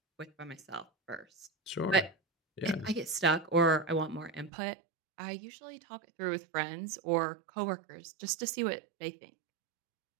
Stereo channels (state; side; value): drops out; left; at 4.5 s